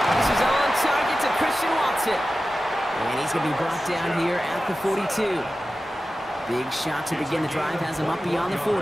This is on target to Christian Watson. And he's going to be brought down here at the 42. Big shot to begin the drive has him up beyond the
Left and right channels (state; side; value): normal; both; correlation 0.94